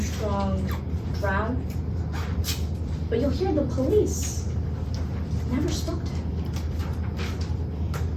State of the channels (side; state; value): both; identical; correlation 1.00